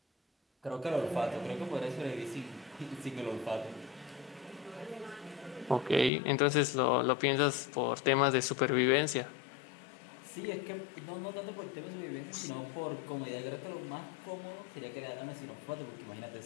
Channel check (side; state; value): right; drops out; at 6.1 s